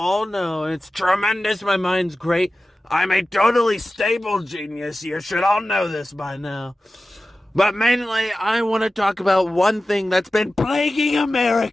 know. It's tremendous, my mind's great. I'm a totally stable genius, you should all know this by now. But mainly, I want to talk about one thing that's been plaguing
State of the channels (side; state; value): both; normal; correlation 0.95